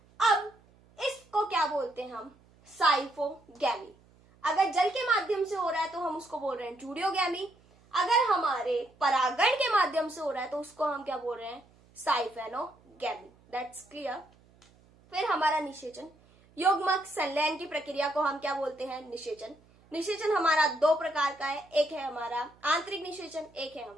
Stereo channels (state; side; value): noise; right; hum, 29 dB below the sound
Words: अब इसको क्या बोलते हैं हम, साइफोगैमी। अगर जल के माध्यम से हो रहा है तो हम उसको बोल रहे हैं जूडियोगैमी। अगर हमारे परागण के माध्यम से हो रहा है तो उसको हम क्या बोल रहे हैं, साइफेनोगैमी। That's clear. फिर हमारा निषेचन, युग्मक संलयन की प्रक्रिया को हम क्या बोलते हैं, निषेचन। निषेचन हमारा दो प्रकार का है, एक है हमारा आंतरिक निषेचन, एक है